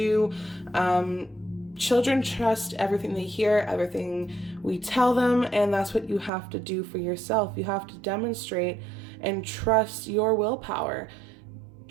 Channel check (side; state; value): left; drops out; at 6.3 s